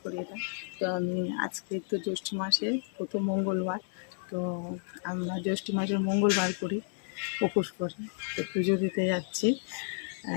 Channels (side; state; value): right; silent; digital silence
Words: করি এটা। তো আমি আজকে তো জ্যৈষ্ঠ মাসের প্রথম মঙ্গলবার, তো আমরা জ্যৈষ্ঠ মাসের মঙ্গলবার করি, উপোস করি। তো পুজো দিতে যাচ্ছি।